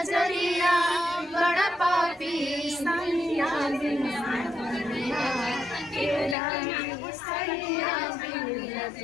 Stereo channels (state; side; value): drops out; right; at 6.4 s